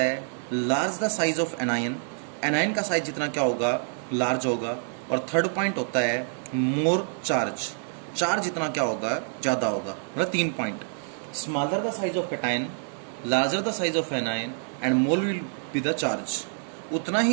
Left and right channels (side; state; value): left; silent; digital silence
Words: large the size of anion, anion का साइज जितना क्या होगा लार्ज होगा। और थर्ड पॉइंट होता है मोर चार्ज, चार्ज जितना क्या होगा ज़्यादा होगा। मतलब 3 point, smaller the size of कटाइन, larger the size of anion and more will be the charge. उतना